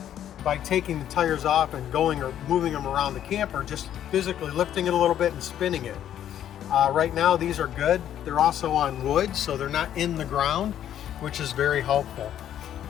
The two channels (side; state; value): right; quieter; 10.7 dB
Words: by taking the tires off and going or moving them around the camper, just physically lifting it a little bit and spinning it. Right now these are good. They're also on wood, so they're not in the ground, which is very helpful.